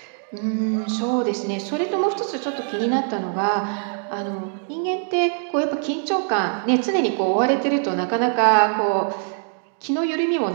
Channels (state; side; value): silent; left; 64 dB below the other